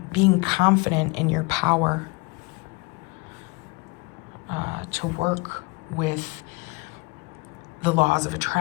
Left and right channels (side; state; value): right; quieter; 26.1 dB